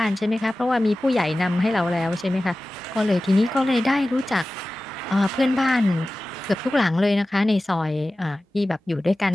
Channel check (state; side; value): normal; both; correlation 0.96